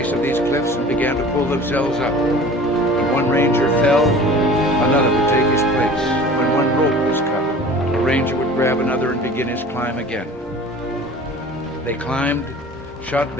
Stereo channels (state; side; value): normal; both; correlation 0.43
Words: of these cliffs and began to pull themselves up. When one Ranger fell, another would take his place. When one rope was cut, a Ranger would grab another and begin his climb again. They climbed, shot